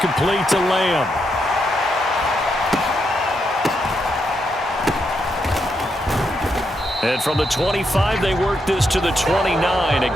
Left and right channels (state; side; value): normal; both; correlation 0.81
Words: to Lamb. And from the 25, they work this to the 29, a